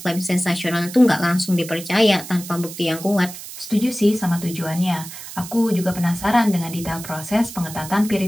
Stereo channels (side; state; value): right; noise; hiss, 12 dB below the sound